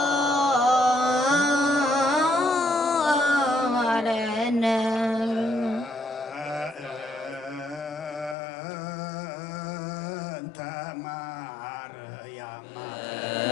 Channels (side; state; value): right; drops out; at 8.3 s